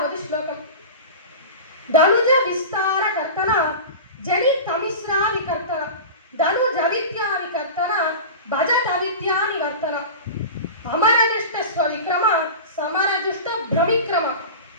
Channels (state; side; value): inverted; both; correlation -0.30